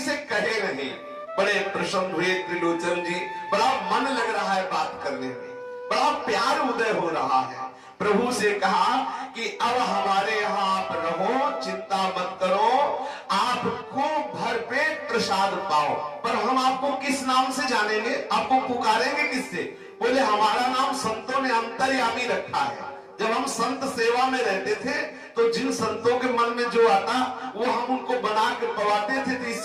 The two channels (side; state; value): both; identical; correlation 1.00